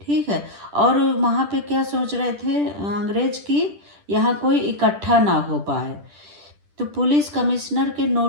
ठीक है, और वहाँ पे क्या सोच रहे थे अंग्रेज की यहाँ कोई इकट्ठा ना हो पाए, तो पुलिस कमिश्नर के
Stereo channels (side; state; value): left; late; 10 ms